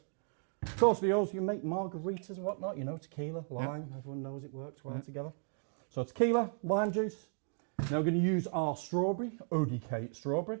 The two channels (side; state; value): left; silent; 54 dB below the other